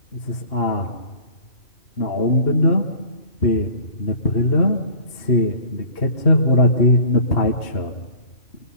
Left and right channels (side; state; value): right; late; 2.8 ms